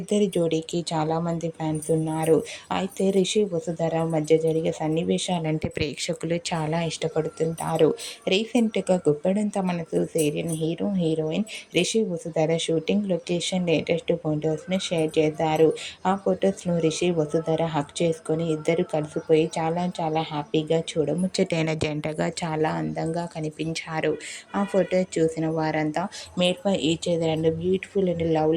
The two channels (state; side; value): identical; both; correlation 1.00